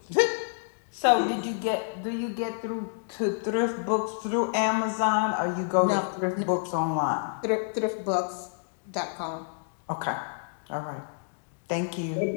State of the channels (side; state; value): right; silent; digital silence